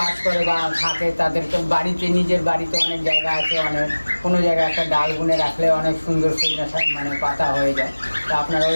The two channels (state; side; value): inverted; both; correlation -1.00